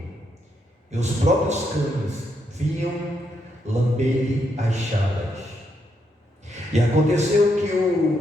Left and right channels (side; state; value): both; normal; correlation 0.79